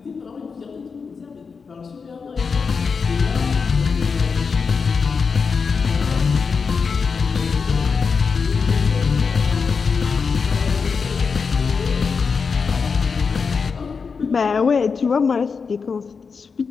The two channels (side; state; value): right; quieter; 5.4 dB